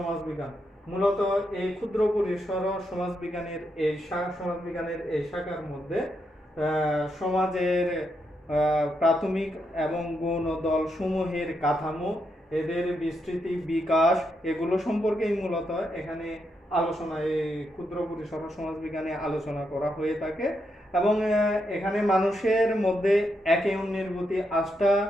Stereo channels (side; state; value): both; normal; correlation 0.81